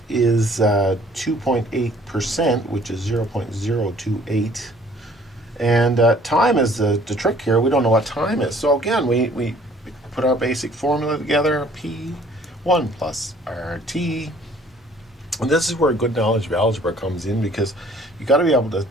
is 2.8%, which is 0.028. And time is the trick here. We don't know what time is. So again, we put our basic formula together, P1 plus RT. And this is where good knowledge of algebra comes in, because you got to be able to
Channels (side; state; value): both; normal; correlation 0.56